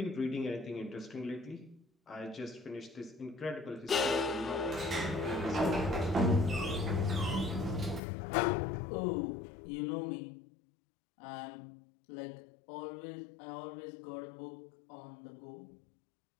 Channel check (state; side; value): drops out; right; at 8.0 s